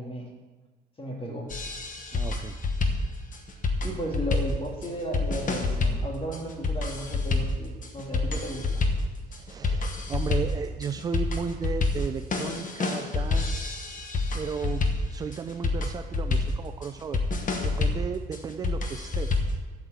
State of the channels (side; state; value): both; normal; correlation 0.66